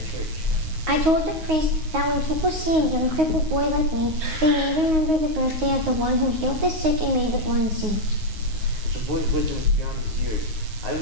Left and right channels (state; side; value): late; left; 9.5 ms